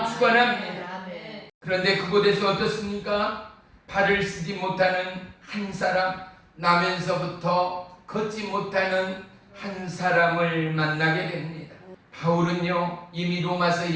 축원합니다. 그런데 그곳에서 어떻습니까? 발을 쓰지 못하는 한 사람, 나면서부터 걷지 못하는 한 사람을 만나게 됩니다. 바울은요, 이미 로마서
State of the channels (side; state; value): both; identical; correlation 1.00